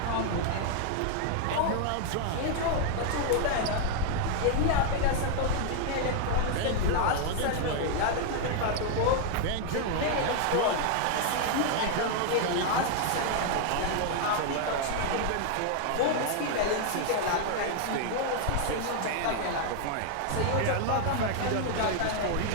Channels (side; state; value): both; different; correlation 0.00